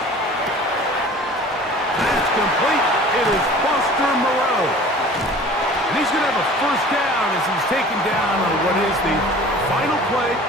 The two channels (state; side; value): normal; both; correlation 0.44